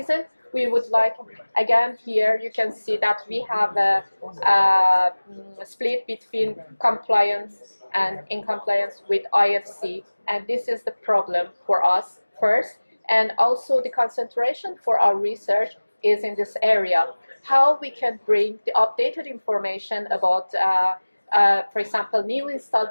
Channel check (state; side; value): inverted; both; correlation -1.00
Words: we would like, again, here you can see that we have a split between compliance and in compliance with IFC. And this is the problem for us first. And also the concentration for our research is in this area. How we can bring the updated information about, for example, new